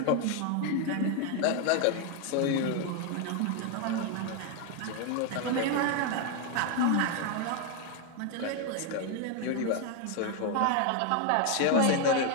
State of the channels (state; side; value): different; both; correlation 0.01